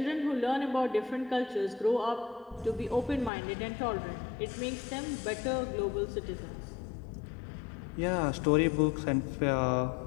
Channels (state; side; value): drops out; right; at 3.3 s